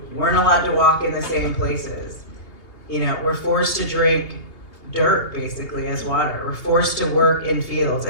weren't allowed to walk in the same places. We're forced to drink dirt, basically, as water. We're forced to work in fields,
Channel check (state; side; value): late; right; 2.8 ms